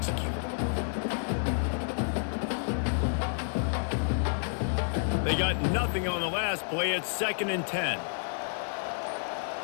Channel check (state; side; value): silent; right; digital silence